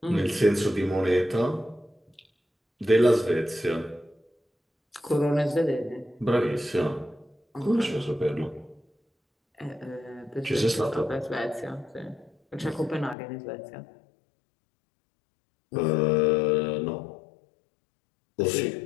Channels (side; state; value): right; drops out; at 13.2 s